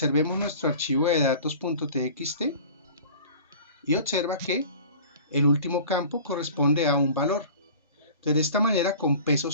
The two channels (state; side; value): inverted; both; correlation -0.43